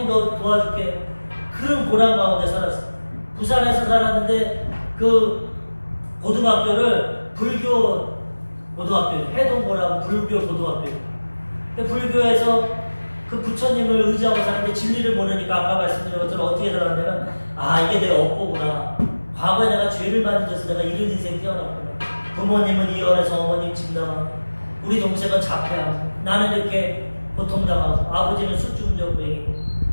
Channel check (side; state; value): both; inverted; correlation -1.00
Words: 너 도와줄게. 그런 고난 가운데 살았어. 부산에서 살았는데 그 고등학교를 불교 고등학교, 해동고라고 불교 고등학교. 불교에서 그 부처님을 의지하고 사는데 진리를 모르니까 아까 말씀드린 것처럼 어떻게 살았냐면 이게 내 업보구나. 과거에 내가 죄를 많이 져서 내가 이런 인생 태어났구나. 부모님은 이혼해서 어머님 집 나가고 우리 동생은 자폐하고 나는 이렇게 고통당하고 아버지는 술중전부행이고